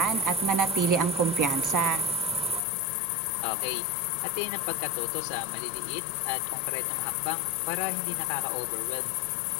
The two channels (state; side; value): drops out; right; at 2.6 s